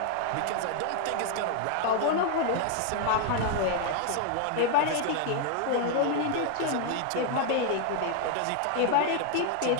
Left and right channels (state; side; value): different; both; correlation 0.00